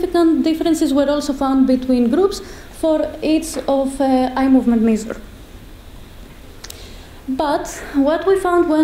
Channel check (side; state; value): both; identical; correlation 1.00